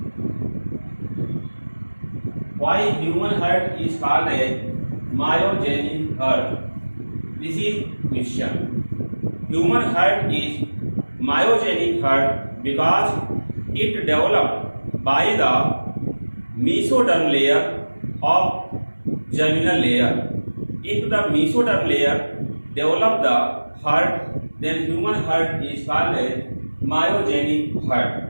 Why human heart is called a myogenic heart? This is question. Human heart is myogenic heart because it developed by the mesoderm layer of germinal layer. If the mesoderm layer develop the heart, then human heart is called a myogenic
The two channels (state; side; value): inverted; both; correlation -1.00